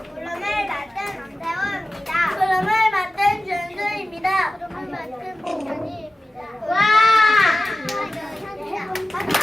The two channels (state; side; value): normal; both; correlation 0.95